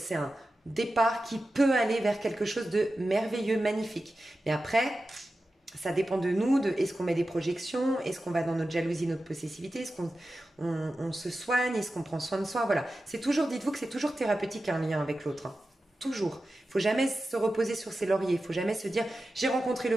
un départ qui peut aller vers quelque chose de merveilleux, magnifique. Mais après... ça dépend de nous, de est-ce qu'on met des projections, est-ce qu'on va dans notre jalousie, notre possessivité, est-ce qu'on on se soigne, est-ce qu'on prend soin de soi, voilà. C'est toujours, dites-vous que c'est toujours thérapeutique un lien avec l'autre, hein. Toujours. Il ne faut jamais se reposer sur ses lauriers, il ne faut jamais se dire j'ai rencontré le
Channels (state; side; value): normal; both; correlation 0.93